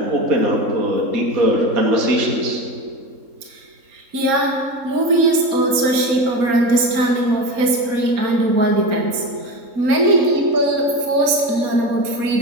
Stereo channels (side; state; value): left; late; 3.7 ms